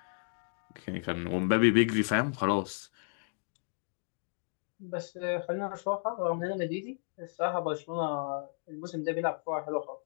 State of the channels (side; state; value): right; silent; digital silence